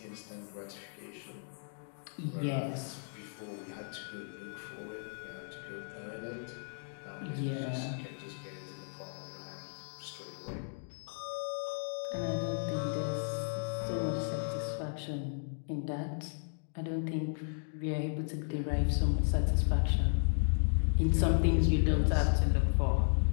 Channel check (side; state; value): right; silent; digital silence